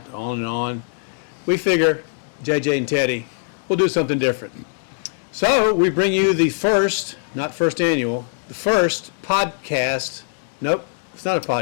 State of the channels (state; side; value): silent; right; digital silence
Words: on and on. We figure, JJ and Teddy, we'll do something different. So we bring you the first, not first annual, the first podcast. Nope, it's not a